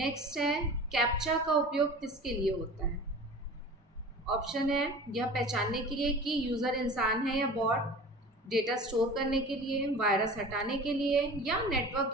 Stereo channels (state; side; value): normal; both; correlation 0.38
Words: है, कैप्चा का उपयोग किसके लिए होता है? ऑप्शन है, यह पहचानने के लिए कि यूजर इंसान है या बॉट, डेटा स्टोर करने के लिए, वायरस हटाने के लिए या